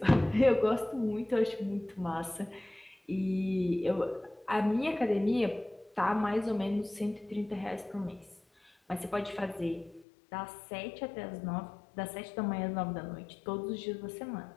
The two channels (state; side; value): drops out; right; at 10.1 s